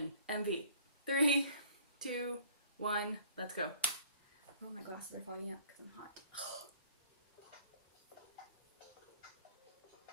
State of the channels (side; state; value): both; inverted; correlation -0.53